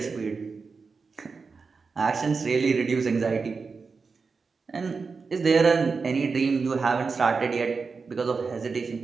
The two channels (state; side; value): quieter; left; 4.8 dB